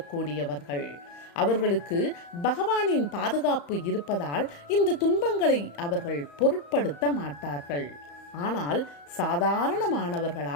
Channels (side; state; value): right; late; 35 ms